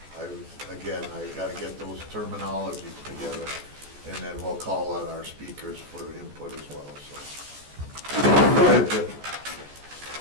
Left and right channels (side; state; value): left; late; 14 ms